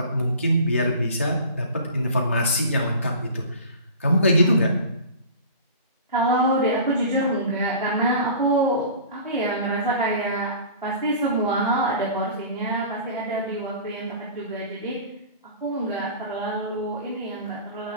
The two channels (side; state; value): both; inverted; correlation -0.41